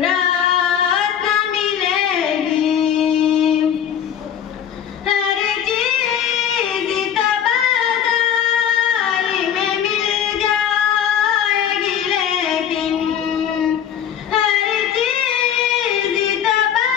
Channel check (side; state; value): right; quieter; 9.1 dB